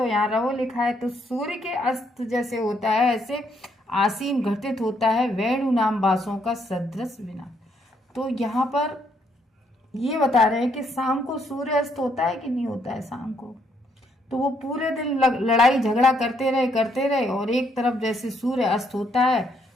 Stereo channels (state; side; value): normal; both; correlation 0.72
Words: यहाँ रवो लिखा है, तो सूर्य के अस्त जैसे होता है ऐसे आसीन घटित होता है वेणु नाम बासों का सदृश विनाश। तो यहाँ पर ये बता रहे हैं कि शाम को सूर्य अस्त होता है कि नहीं होता है शाम को, तो वो पूरे दिन लड़ाई झगड़ा करते रहे, और एक तरफ जैसे सूर्य अस्त होता है,